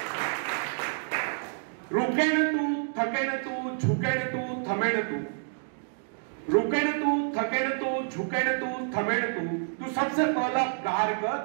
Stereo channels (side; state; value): left; silent; digital silence